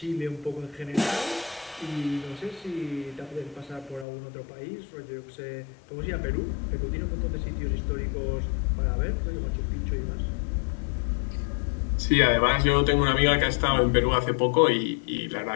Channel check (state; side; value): drops out; right; at 4.0 s